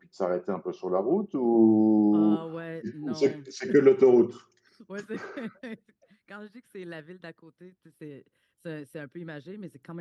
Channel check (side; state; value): both; identical; correlation 1.00